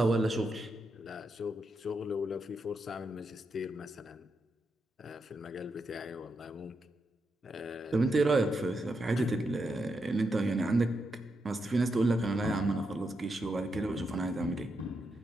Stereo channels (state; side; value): normal; both; correlation 0.83